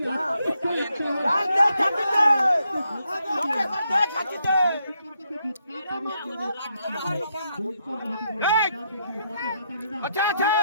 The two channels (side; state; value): both; inverted; correlation -0.78